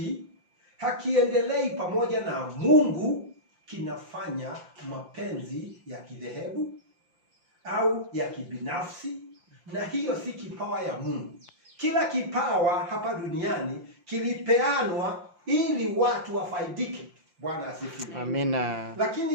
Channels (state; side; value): late; left; 5.7 ms